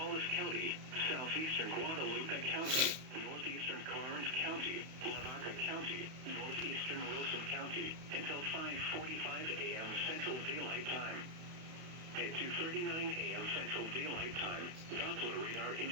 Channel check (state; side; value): late; left; 31 ms